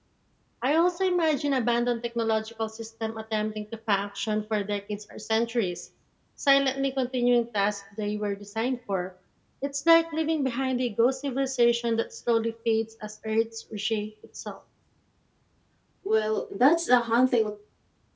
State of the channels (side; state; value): both; identical; correlation 1.00